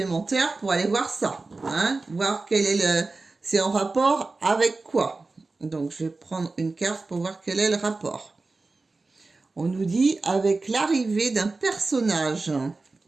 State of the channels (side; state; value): left; quieter; 3.6 dB